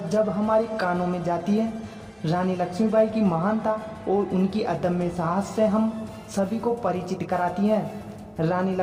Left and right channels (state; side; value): identical; both; correlation 1.00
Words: हमारे कानों में जाती है, रानी लक्ष्मीबाई की महानता और उनकी अदम्य साहस से हम सभी को परिचित कराती हैं। रानी